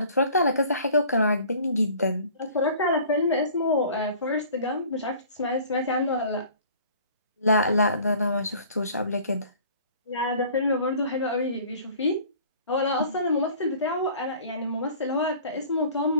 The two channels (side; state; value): both; inverted; correlation -0.49